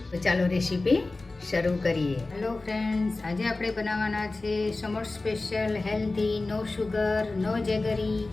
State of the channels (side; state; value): right; quieter; 3.3 dB